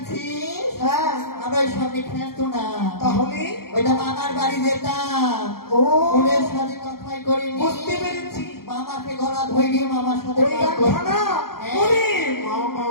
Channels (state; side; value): late; right; 0.94 ms